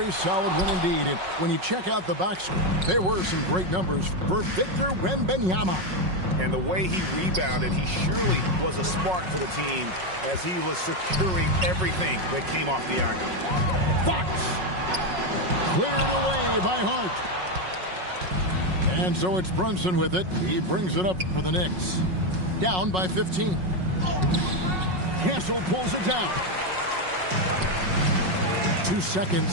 solid win indeed. And when you check out the box score, there were some great numbers for Victor Wembanyama. And the way he rebounded, he surely was a spark for the team as he was securing everything that came off the iron. Fox cleared away by Hart. And so it's Brunson with it. He brings it up for the Knicks. Down by 15. Castle pulls it down. 2 seconds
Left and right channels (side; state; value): left; late; 5.4 ms